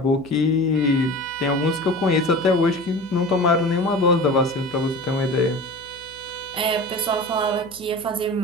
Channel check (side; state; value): left; noise; hum, 26 dB below the sound